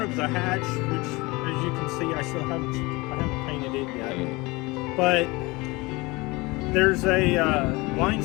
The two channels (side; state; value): right; quieter; 23.7 dB